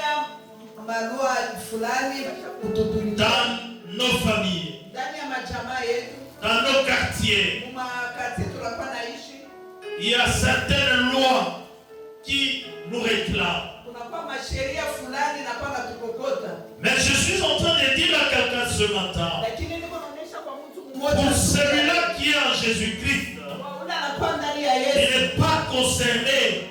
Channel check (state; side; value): identical; both; correlation 1.00